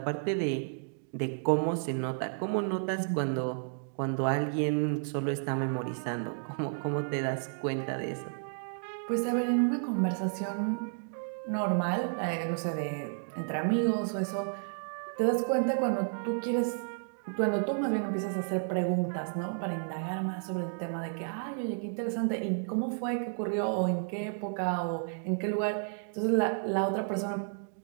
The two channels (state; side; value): silent; left; digital silence